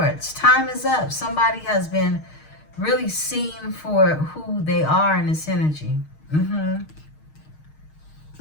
Time is up. Somebody has been really seen for who they are in this energy.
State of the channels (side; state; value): right; late; 6.4 ms